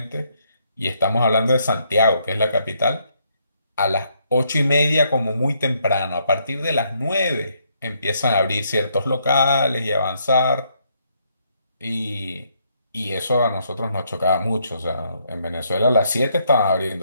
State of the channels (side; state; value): both; inverted; correlation -0.73